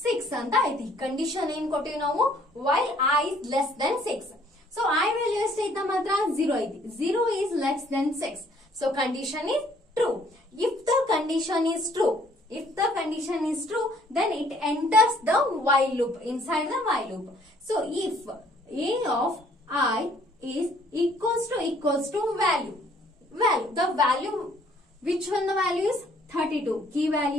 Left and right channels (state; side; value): normal; both; correlation 0.61